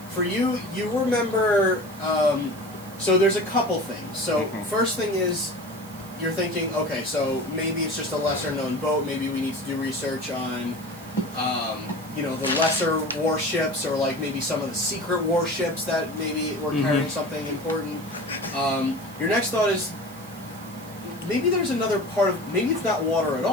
For you, you remember. So there's a couple things. So Mhm. first thing is, you're thinking, okay, so maybe it's just a lesser known boat. Maybe we need to do research on, the lesser warships, or like maybe some of the secret warships that maybe were carrying something important. Your next thought is, maybe there's another part of, maybe it's not water at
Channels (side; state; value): right; noise; hiss, 20 dB below the sound